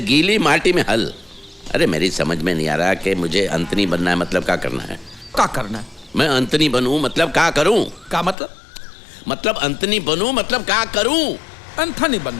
गीली माटी में हल। अरे मेरी समझ में नहीं आ रहा कि मुझे अंतनी बनना है मतलब क्या करना है? क्या करना है? मैं अंतनी बनूं मतलब क्या करूं? क्या मतलब? मतलब अंतनी बनूं मतलब क्या करूं? एंथोनी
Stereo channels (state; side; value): drops out; right; at 8.3 s